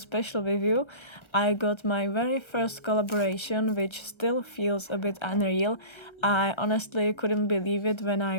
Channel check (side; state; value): right; late; 1.3 ms